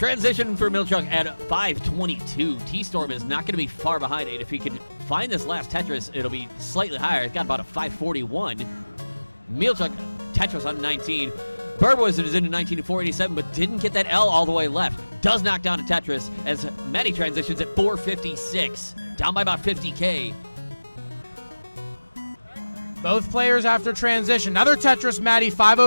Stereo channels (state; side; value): inverted; both; correlation -1.00